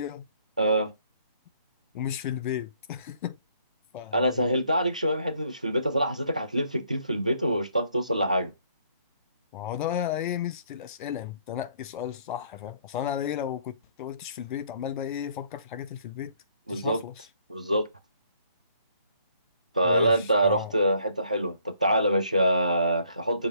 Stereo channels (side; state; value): both; inverted; correlation -0.65